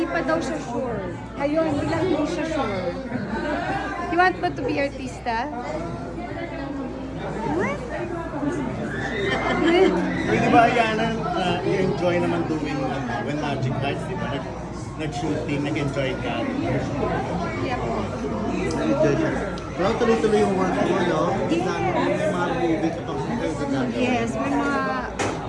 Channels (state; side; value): identical; both; correlation 1.00